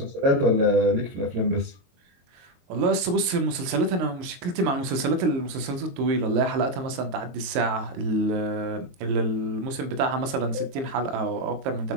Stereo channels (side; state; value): left; late; 22 ms